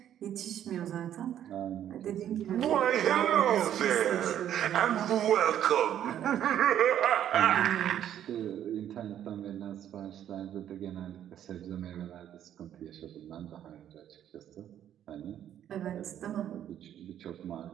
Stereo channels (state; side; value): quieter; left; 10.6 dB